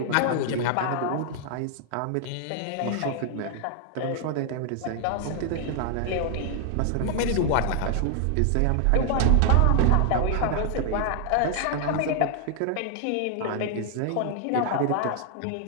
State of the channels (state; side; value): different; both; correlation 0.00